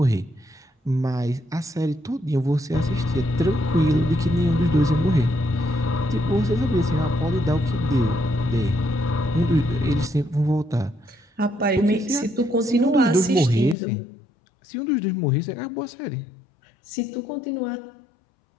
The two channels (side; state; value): right; drops out; at 13.8 s